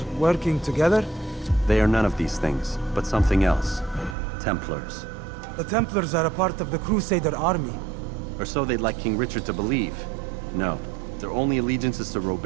working together? They are none of these things, but something else. Templars. The Templars are a part of the Crusader army. Or so they'd like King Richard to believe. No, their only allegiance is to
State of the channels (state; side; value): drops out; left; at 4.2 s